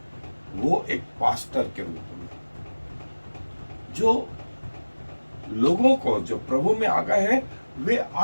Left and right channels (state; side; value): inverted; both; correlation -1.00